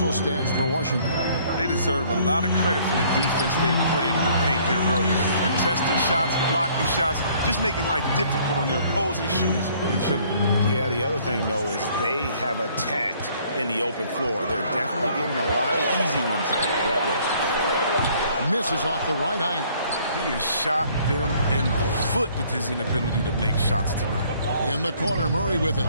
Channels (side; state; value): both; inverted; correlation -0.60